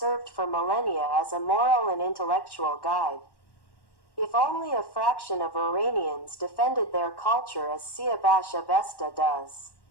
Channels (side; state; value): right; late; 1.1 ms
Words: for millennia as a moral and intellectual guide. If only a fraction of Iranians defended their culture as Siavash Ovasta does,